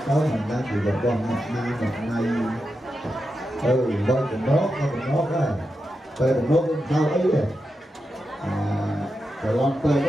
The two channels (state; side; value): normal; both; correlation 0.88